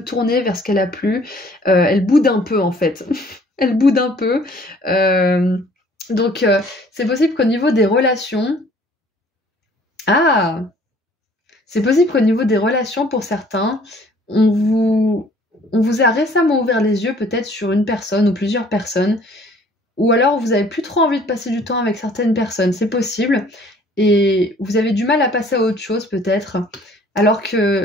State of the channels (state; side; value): normal; both; correlation 0.56